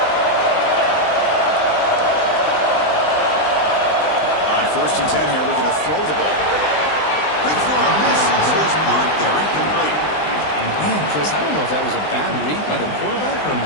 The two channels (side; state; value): right; late; 20 ms